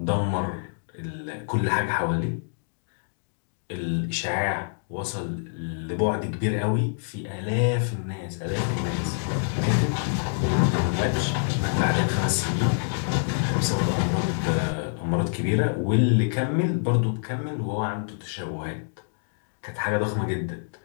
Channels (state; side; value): silent; right; digital silence